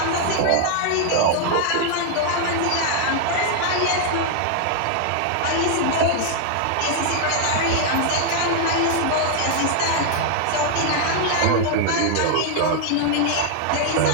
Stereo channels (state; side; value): different; both; correlation 0.00